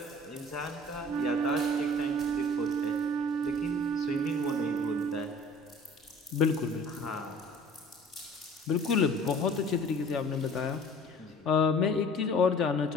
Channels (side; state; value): both; normal; correlation 0.48